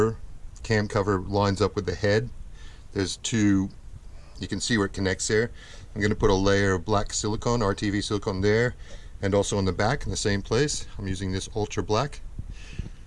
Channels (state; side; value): identical; both; correlation 1.00